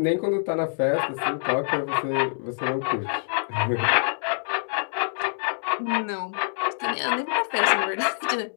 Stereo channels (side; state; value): right; silent; digital silence